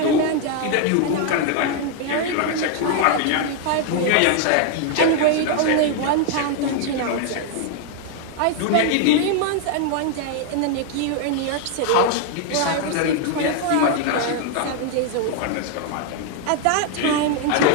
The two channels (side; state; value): both; different; correlation 0.00